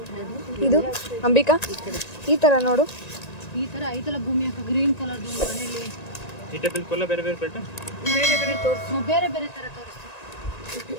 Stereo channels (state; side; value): late; right; 1.9 ms